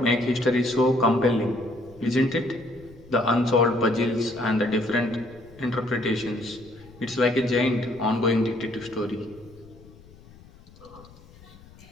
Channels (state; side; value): noise; left; rumble, 23 dB below the sound